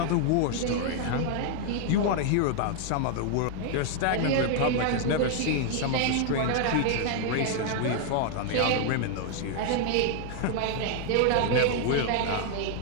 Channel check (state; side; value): different; both; correlation 0.00